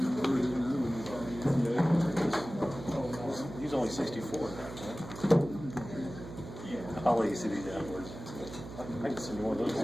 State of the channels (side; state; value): right; noise; hum, 12 dB below the sound